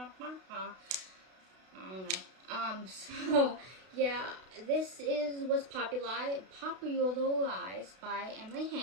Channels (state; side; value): late; left; 32 ms